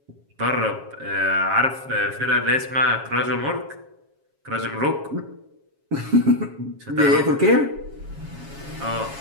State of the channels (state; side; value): late; left; 7.3 ms